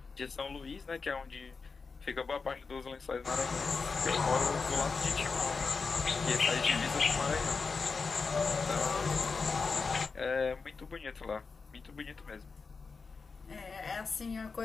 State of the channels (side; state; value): right; quieter; 4.7 dB